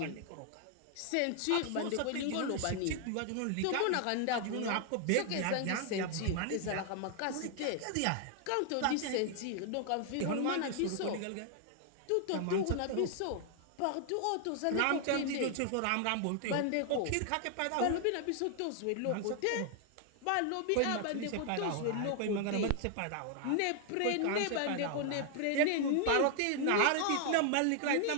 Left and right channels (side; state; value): both; different; correlation 0.00